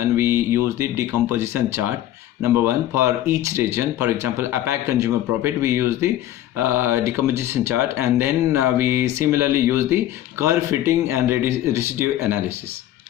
we use the decomposition chart. Number one, for each region, for example, APAC consumer profit, we use the decomposition chart, and then we similarly use the curve fitting and residue analysis.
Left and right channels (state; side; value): quieter; right; 13.0 dB